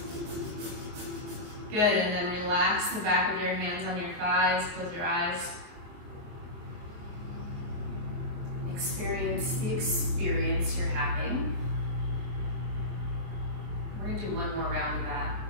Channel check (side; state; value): left; late; 24 ms